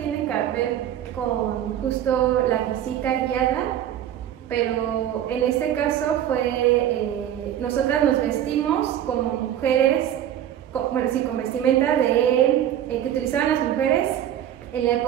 que ver con justo la visita guiada, pero en este caso fue, nosotras nos vestimos como mujeres, con vestimenta que utilizaban las mujeres en la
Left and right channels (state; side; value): quieter; left; 11.0 dB